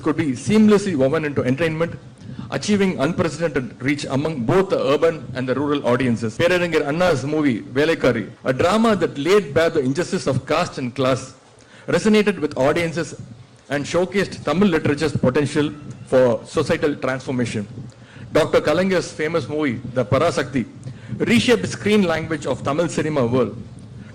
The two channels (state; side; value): identical; both; correlation 1.00